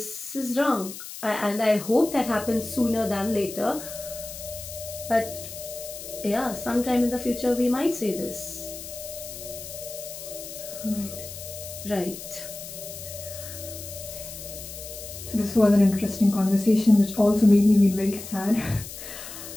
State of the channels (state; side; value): noise; left; hiss, 11 dB below the sound